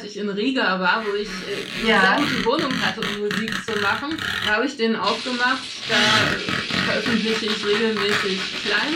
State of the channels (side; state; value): both; identical; correlation 1.00